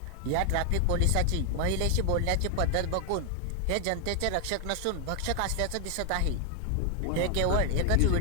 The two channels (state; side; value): different; both; correlation 0.00